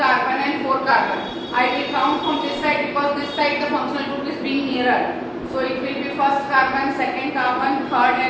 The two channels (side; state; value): both; identical; correlation 1.00